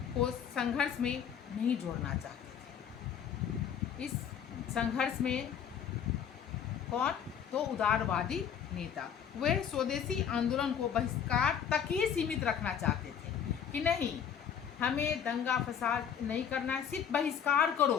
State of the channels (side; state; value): right; quieter; 8.1 dB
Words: को संघर्ष में नहीं जोड़ना चाहते थे। इस संघर्ष में कौन? तो उदारवादी नेता, वे स्वदेशी आंदोलन को बहिष्कार तक ही सीमित रखना चाहते थे कि नहीं, हमें दंगा फसाद नहीं करना है, सिर्फ बहिष्कार करो,